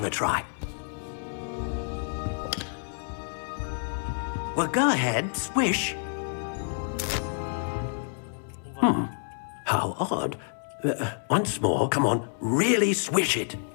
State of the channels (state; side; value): silent; right; 59 dB below the other